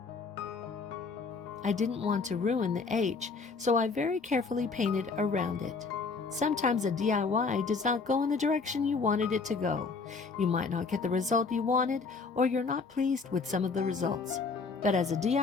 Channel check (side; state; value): right; quieter; 4.5 dB